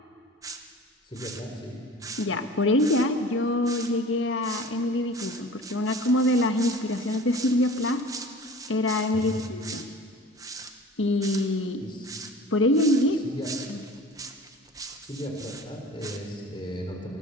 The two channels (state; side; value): normal; both; correlation 0.42